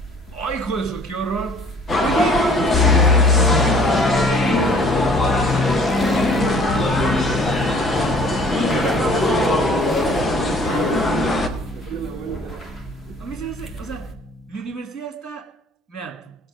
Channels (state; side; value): normal; both; correlation 0.54